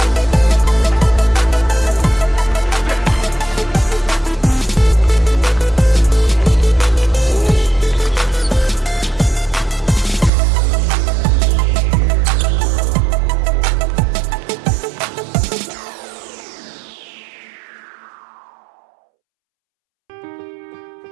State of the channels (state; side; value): drops out; left; at 10.3 s